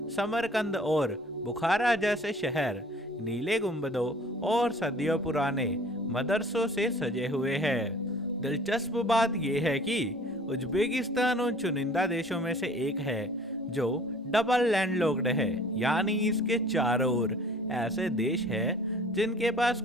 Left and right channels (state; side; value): normal; both; correlation 0.50